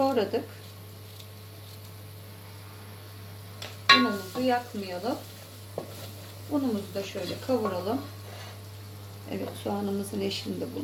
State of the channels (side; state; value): both; identical; correlation 1.00